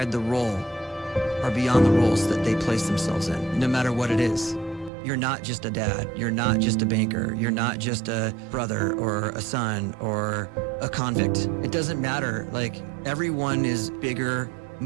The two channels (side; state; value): left; drops out; at 4.9 s